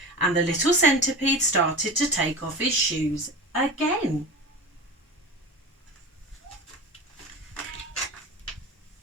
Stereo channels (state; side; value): normal; both; correlation 0.30